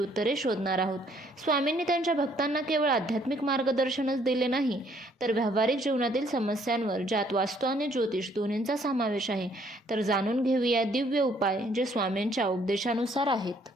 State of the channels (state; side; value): normal; both; correlation 0.64